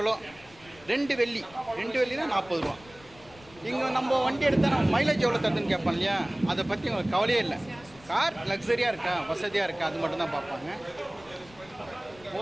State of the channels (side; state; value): left; noise; rumble, 24 dB below the sound